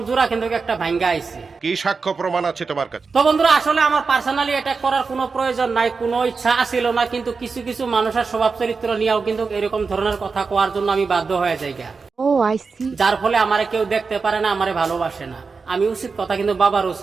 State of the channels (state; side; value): quieter; left; 4.7 dB